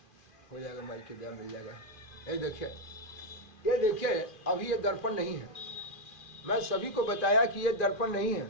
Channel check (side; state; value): right; late; 2.4 ms